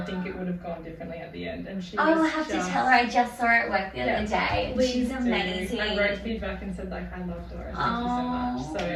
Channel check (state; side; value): identical; both; correlation 1.00